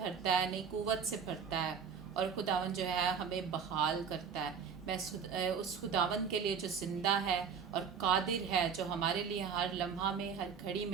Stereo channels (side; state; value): left; quieter; 6.8 dB